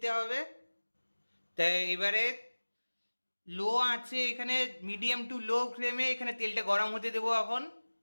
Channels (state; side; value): inverted; both; correlation -1.00